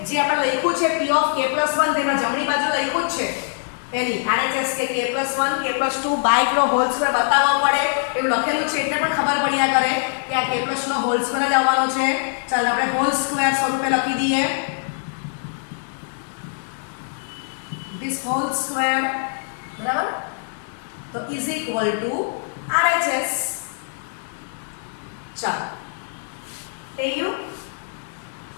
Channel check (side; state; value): right; silent; digital silence